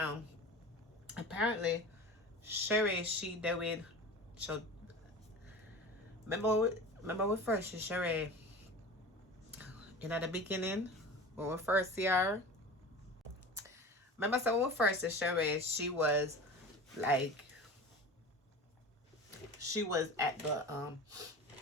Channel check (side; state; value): both; normal; correlation 0.34